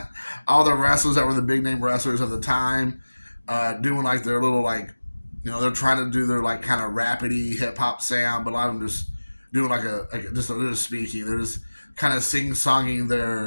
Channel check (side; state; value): both; inverted; correlation -1.00